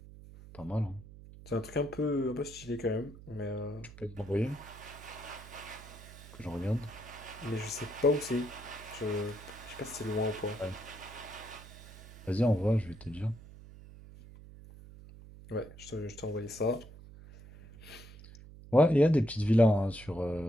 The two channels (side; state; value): right; noise; hum, 17 dB below the sound